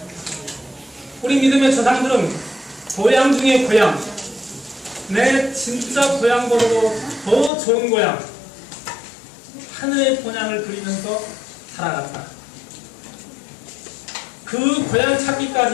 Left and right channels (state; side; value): drops out; right; at 7.5 s